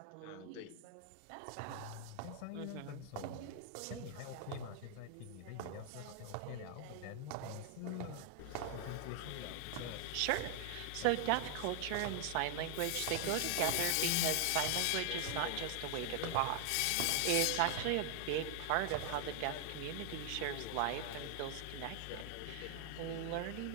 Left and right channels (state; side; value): different; both; correlation 0.00